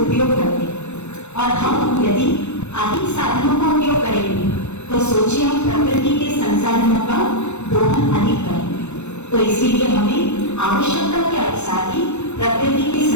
करते हैं। और हम यदि अधिक साधनों का उपयोग करेंगे तो सोचिए हम प्रकृति के संसाधनों का दोहन अधिक करेंगे। तो इसीलिए हमें आवश्यकता के अनुसार ही प्रकृति के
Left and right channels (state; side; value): late; right; 0.82 ms